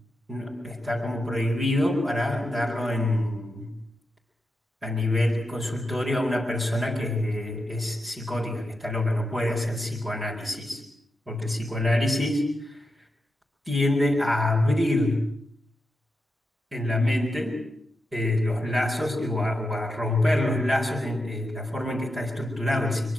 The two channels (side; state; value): both; normal; correlation 0.87